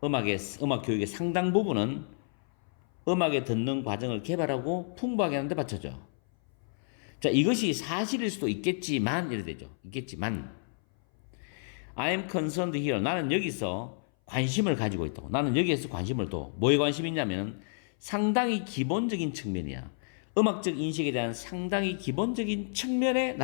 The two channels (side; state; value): right; silent; 57 dB below the other